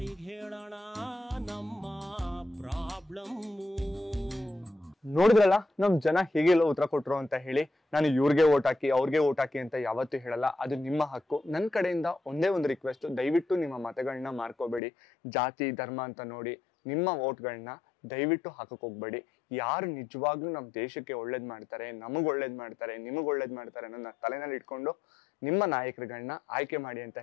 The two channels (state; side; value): drops out; right; at 14.8 s